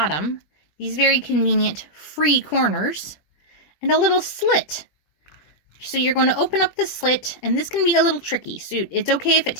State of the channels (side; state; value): right; late; 20 ms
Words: these very convenient free corners, and a little slit. So you're going to open up the slit, and this can be a little tricky. So it's okay if it